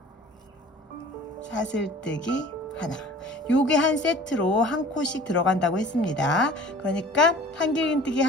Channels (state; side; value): normal; both; correlation 0.45